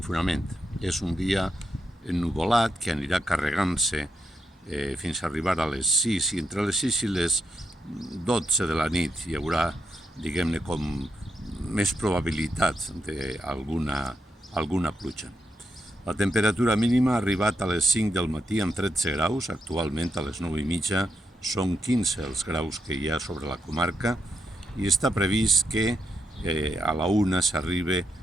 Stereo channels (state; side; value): normal; both; correlation 0.82